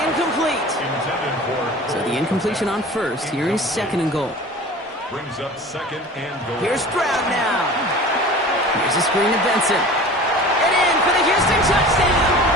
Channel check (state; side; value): normal; both; correlation 0.40